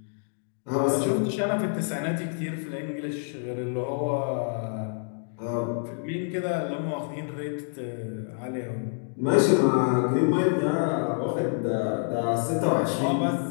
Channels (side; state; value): right; silent; digital silence